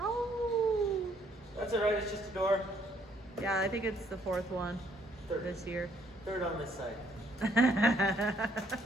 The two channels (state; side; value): normal; both; correlation 0.67